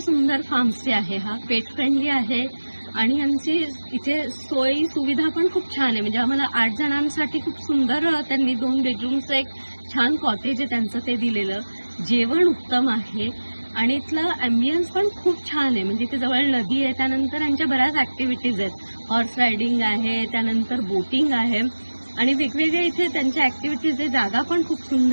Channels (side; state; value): both; inverted; correlation -1.00